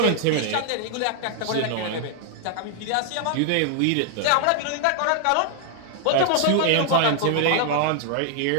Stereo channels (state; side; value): different; both; correlation -0.01